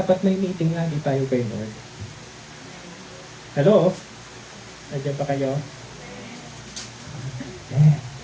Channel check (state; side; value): identical; both; correlation 1.00